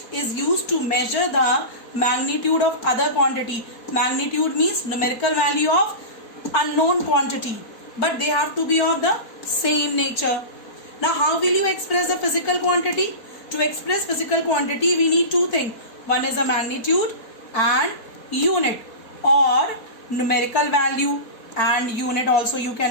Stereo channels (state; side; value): late; right; 4.5 ms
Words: is used to measure the magnitude of other quantity. Magnitude means numerical value of unknown quantity, but they have to be of the same nature. Now how will you express the physical quantity? To express physical quantity we need two things. One is a magnitude and unit, or numerical value and unit also you